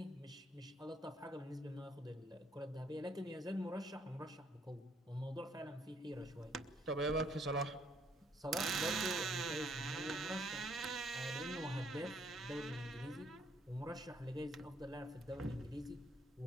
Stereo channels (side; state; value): both; normal; correlation 0.67